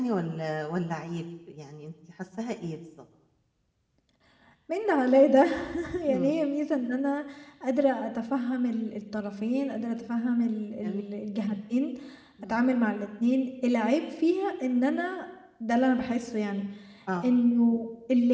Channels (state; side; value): identical; both; correlation 1.00